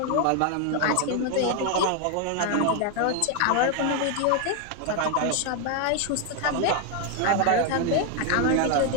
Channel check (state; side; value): different; both; correlation 0.01